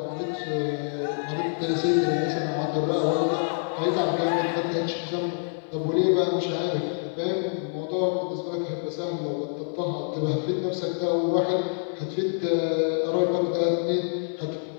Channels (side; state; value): right; silent; digital silence